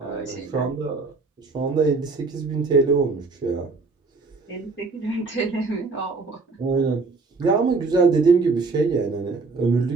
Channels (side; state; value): left; quieter; 4.0 dB